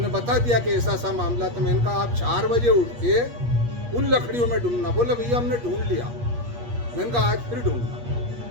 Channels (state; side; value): late; left; 8.4 ms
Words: बता दिया कि ऐसा सा मामला। तो मैंने कहा आप 4 बजे उठ के उन लकड़ियों में ढूंढना। बोले भैया हमने ढूंढ लिया। मैंने कहा आज फिर ढूंढना।